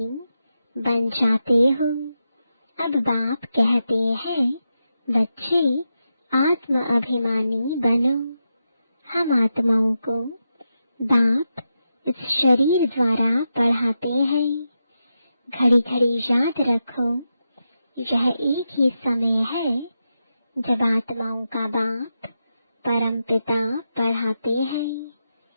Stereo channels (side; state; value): both; inverted; correlation -0.87